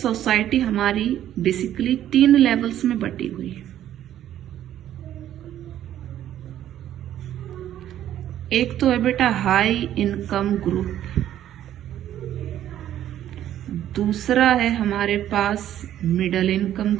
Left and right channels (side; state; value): left; quieter; 11.7 dB